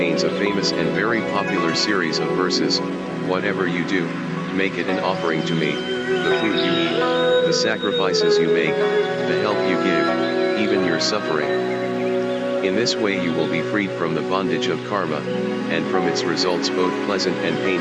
a famous and very popular series of verses. Whatever you do, make it an offering to me, the food you eat, the sacrifices you make, the help you give, even your suffering. In this way you will be freed from the bondage of karma, and from its results both pleasant and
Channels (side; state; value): both; identical; correlation 1.00